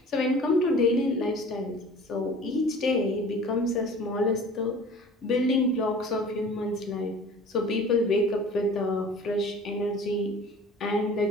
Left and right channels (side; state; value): both; normal; correlation 0.44